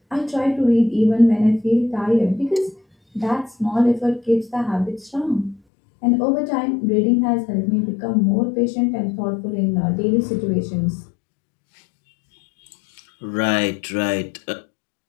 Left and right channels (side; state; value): right; drops out; at 5.6 s